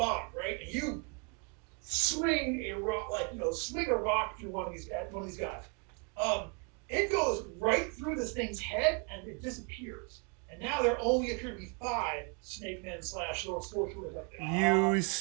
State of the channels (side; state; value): left; quieter; 35.1 dB